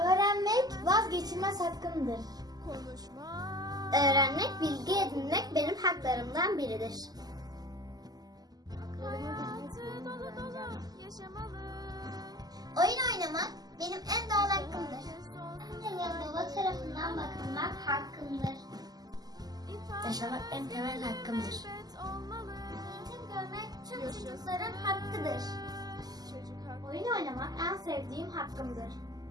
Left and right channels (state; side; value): late; left; 0.19 ms